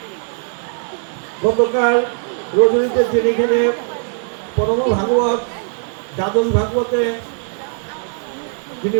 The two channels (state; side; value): silent; left; 66 dB below the other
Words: গতকাল রজনীতে তিনি এখানে পরম ভাগবত দ্বাদশ ভাগবতে যিনি